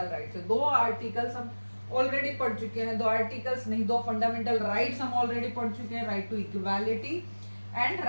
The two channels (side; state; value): both; inverted; correlation -1.00